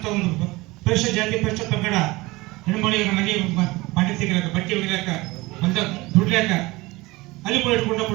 ಒಂದು ಪರಿಶಿಷ್ಟ ಜಾತಿ ಪರಿಶಿಷ್ಟ ಪಂಗಡ ಹೆಣ್ಮಳಿಗೆ ಮನೆ ಪಾಟಿ ತೆಗಿಲಾಕ ಬಟ್ಟೆ ಒಗಿಲಾಕ ಒಂದ ದುಡ್ಲಾಕ ಅಲ್ಲಿ ಕೂಡ ಇಟ್ಕೊಂಡು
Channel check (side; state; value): left; quieter; 21.6 dB